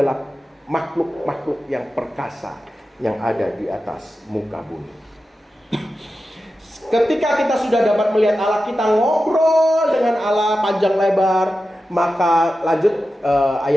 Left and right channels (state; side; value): normal; both; correlation 0.92